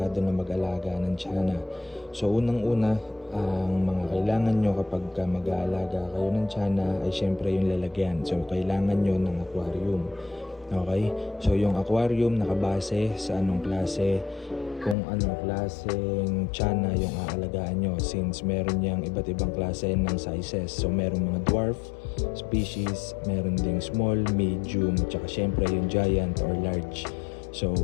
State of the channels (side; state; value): right; drops out; at 15.0 s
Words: na mag-alaga ng tiyanak. So unang-una, ang mga kailangan nyo kapag mag-aalaga kayo ng tiyanak ay syempre yung lalagyan. So kailangan nyo ng aquarium. Okay? So yung aquarium nakabase sa anong klase, kung anong klaseng tiyanak yung aalagaan nyo, since meron niyang iba't ibang klase ng sizes. So meron mga dwarf species, meron ding small, medium, tsaka syempre yung giant or large. So